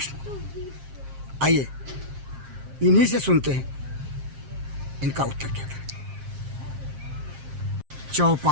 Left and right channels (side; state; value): left; late; 7.5 ms